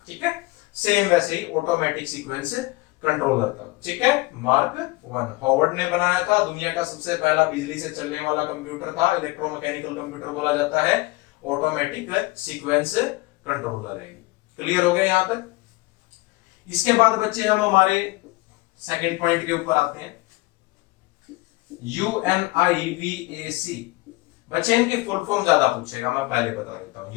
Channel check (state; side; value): quieter; right; 22.0 dB